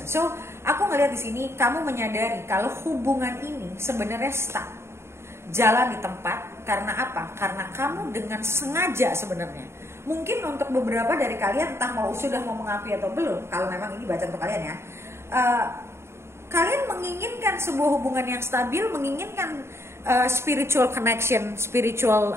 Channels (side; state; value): left; late; 0.13 ms